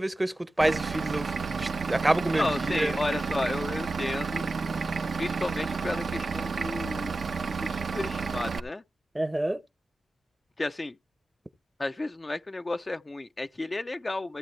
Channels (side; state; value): both; normal; correlation 0.93